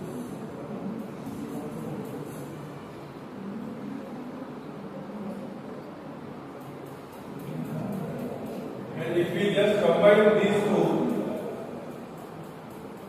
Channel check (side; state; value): both; identical; correlation 1.00